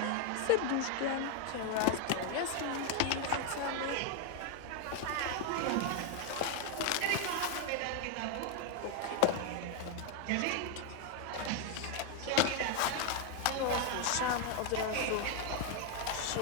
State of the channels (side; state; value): both; different; correlation 0.00